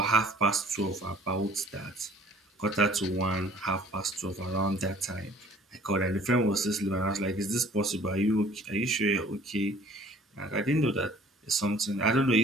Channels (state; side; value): normal; both; correlation 0.53